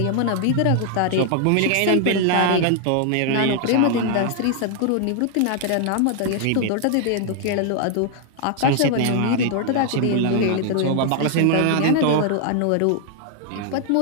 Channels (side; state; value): both; different; correlation 0.00